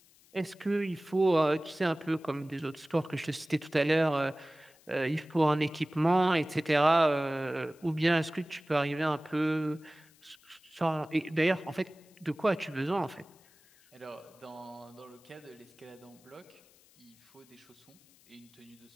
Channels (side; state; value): left; noise; hiss, 29 dB below the sound